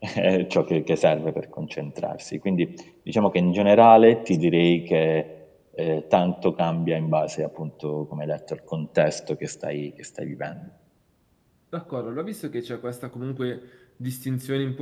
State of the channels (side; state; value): both; identical; correlation 1.00